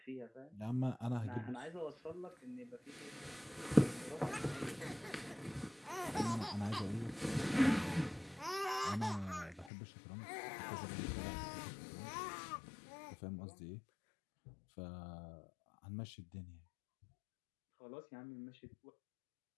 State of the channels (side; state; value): right; drops out; at 9.7 s